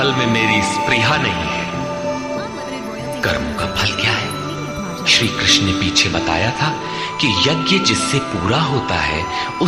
में मेरी स्पृहा नहीं है। कर्मों का फल क्या है? श्री कृष्ण ने पीछे बताया था कि यज्ञ जिससे पूरा होता है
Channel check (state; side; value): identical; both; correlation 1.00